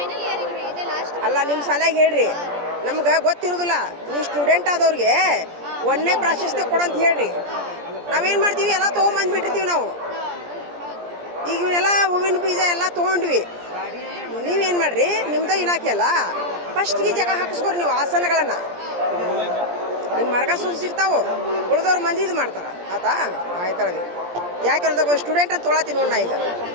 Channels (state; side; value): late; left; 17 ms